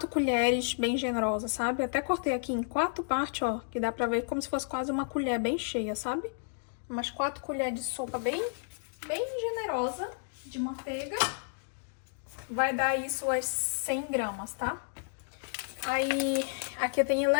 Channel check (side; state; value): right; silent; digital silence